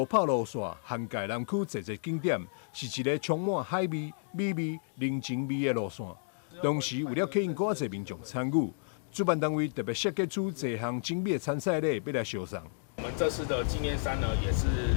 跑路线涵盖南区侪个景点，是一个充满海味、美味、人情味的路线。同时，为了吸引更侪民众参与，主办单位特别设计出多项精美的参赛礼，要来销送。我们这次的纪念衫呢，也是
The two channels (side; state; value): right; silent; digital silence